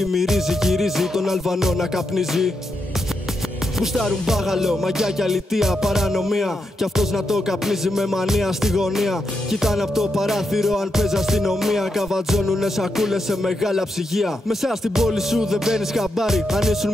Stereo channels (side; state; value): both; normal; correlation 0.84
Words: μυρίζει. Γυρίζει τον Αλβανό να καπνίζει. Γουστάρουν μπάγαλο, μαγιά και αλητία, παρανομία. Κι αυτός να το καπνίζει με μανία στη γωνία. Κοιτάνε από το παράθυρο αν παίζει αστυνομία. Καβατζώνουνε σακούλες σε μεγάλα ψυγεία. Μέσα στην πόλη σου δεν μπαίνεις χαμπάρι. Αν ήσουν